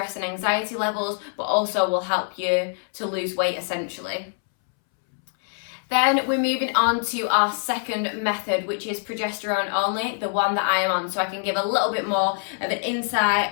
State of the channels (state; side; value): silent; right; 62 dB below the other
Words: and anxiety levels, but also will help you to lose weight essentially. Then we're moving on to our second method, which is progesterone only, the one that I am on, so I can give a little bit more of an insight